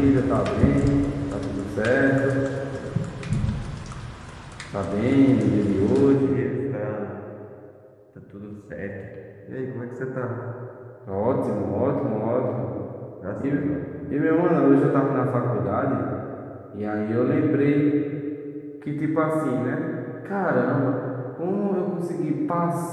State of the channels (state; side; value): identical; both; correlation 1.00